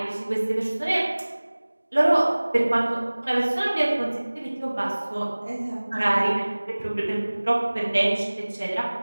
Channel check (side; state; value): both; inverted; correlation -1.00